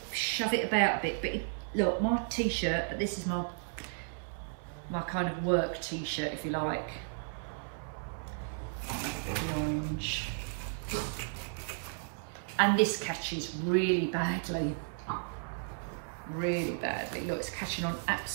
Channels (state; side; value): silent; left; 55 dB below the other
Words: shove it about a bit. But look, my t-shirt, but this is my kind of work t-shirt, if you like. The orange. And this catches really badly. Really badly. Look, it's catching on